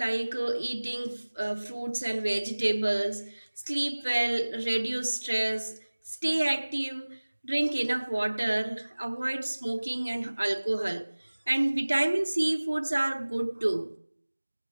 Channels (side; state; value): both; inverted; correlation -1.00